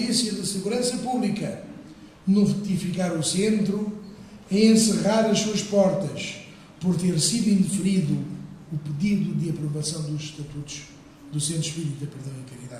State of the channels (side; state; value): both; identical; correlation 1.00